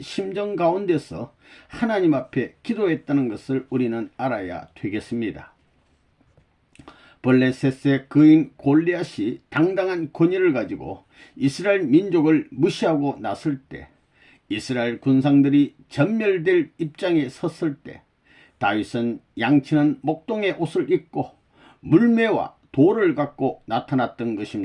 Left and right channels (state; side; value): identical; both; correlation 1.00